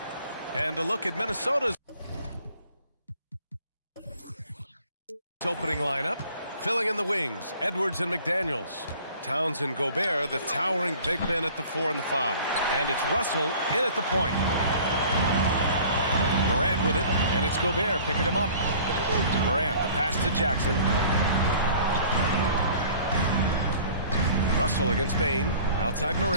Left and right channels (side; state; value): both; inverted; correlation -0.49